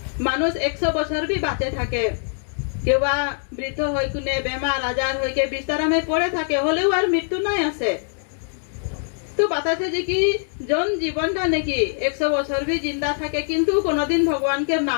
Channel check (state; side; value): silent; right; 64 dB below the other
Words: মানুষ 100 বছর भी বাঁচে থাকে কেউ বা বৃদ্ধ হই কোনে বেমার আজার হইকে বিছানায় পড়ে থাকে হলেও আর মৃত্যু নাই আছে। তো বাতাসে যে কি জন জীবনটা নাকি 100 বছর भी जिंदा থাকে কিন্তু কোনদিন ভগবান के